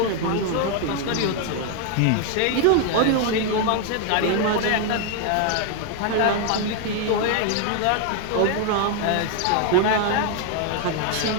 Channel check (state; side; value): different; both; correlation 0.00